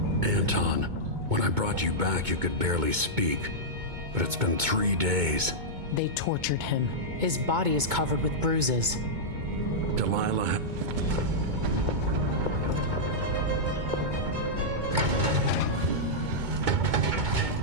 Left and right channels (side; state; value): left; late; 2.2 ms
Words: Anton, when I brought you back, you could barely speak. But it's been 3 days. They tortured him. His body is covered with bruises. Delilah...